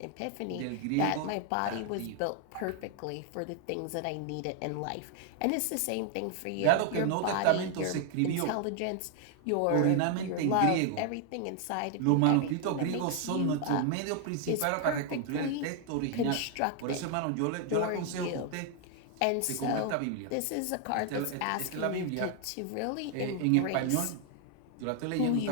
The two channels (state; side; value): different; both; correlation 0.00